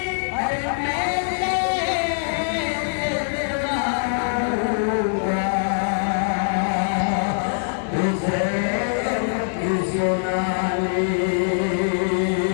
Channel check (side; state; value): right; silent; 64 dB below the other